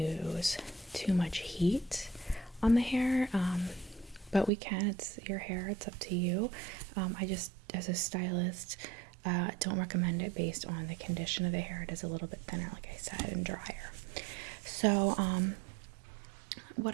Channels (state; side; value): drops out; left; at 4.5 s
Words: too much heat on the hair, but we can. It's your hair, it's up to you. I just, as a stylist, don't recommend it based on the condition of the hair. It is a little bit thinner, like I said, and drier. So what